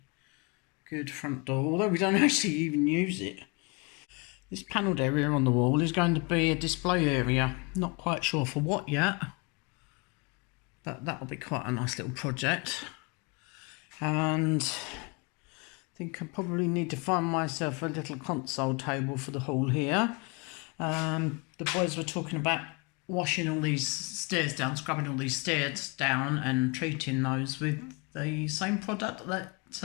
good front door, although we don't actually even use it. This panelled area on the wall is going to be a display area. Not quite sure for what yet, but that'll be quite a nice little project. And I think I probably need to find myself a little console table for the hall here. The boys were talking about washing all these stairs down, scrubbing all these stairs down and treating those with the same product that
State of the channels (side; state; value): right; quieter; 30.2 dB